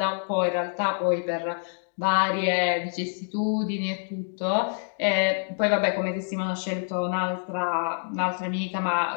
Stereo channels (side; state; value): right; silent; digital silence